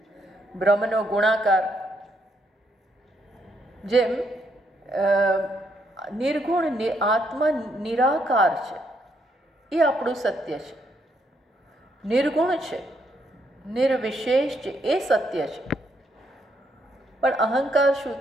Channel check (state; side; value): normal; both; correlation 0.75